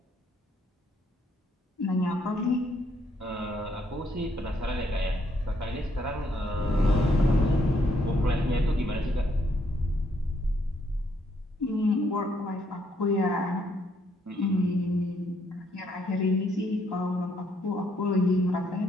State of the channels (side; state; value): both; normal; correlation 0.72